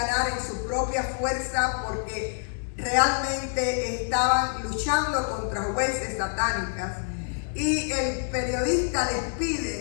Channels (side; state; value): right; silent; 60 dB below the other